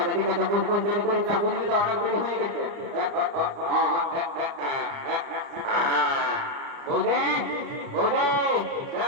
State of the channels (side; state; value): left; late; 29 ms